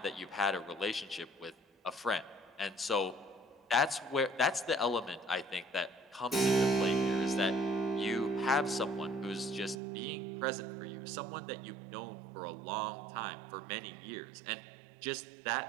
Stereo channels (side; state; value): left; drops out; at 9.8 s